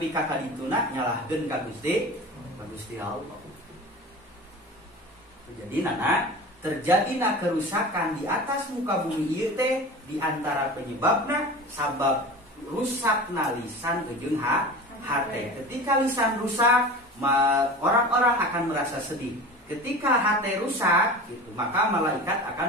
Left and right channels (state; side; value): normal; both; correlation 0.34